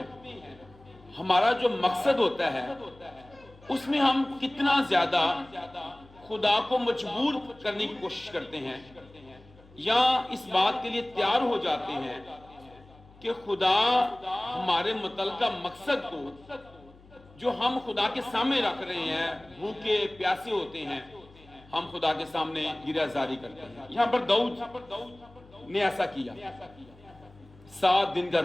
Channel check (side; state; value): left; noise; hum, 25 dB below the sound